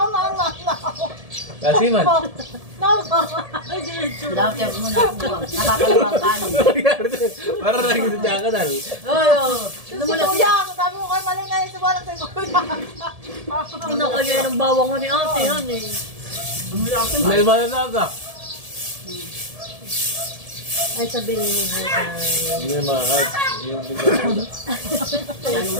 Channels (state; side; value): late; left; 1.7 ms